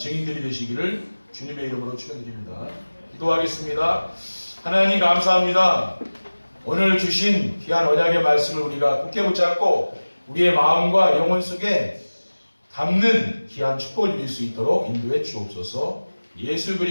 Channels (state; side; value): inverted; both; correlation -1.00